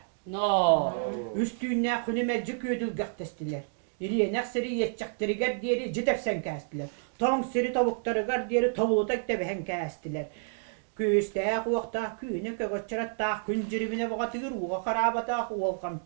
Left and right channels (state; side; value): silent; left; digital silence